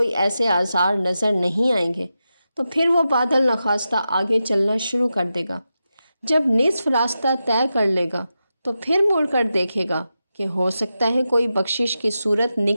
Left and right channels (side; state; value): both; inverted; correlation -0.90